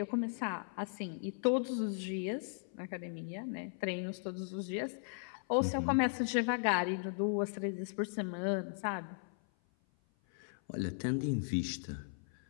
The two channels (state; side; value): silent; right; 53 dB below the other